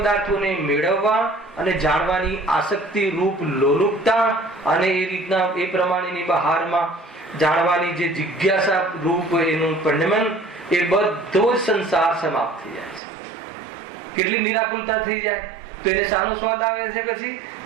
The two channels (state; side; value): drops out; left; at 13.0 s